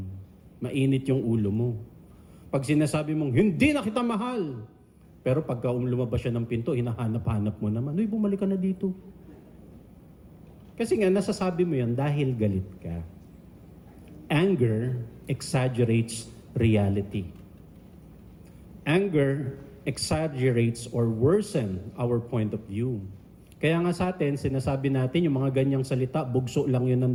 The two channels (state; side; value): identical; both; correlation 1.00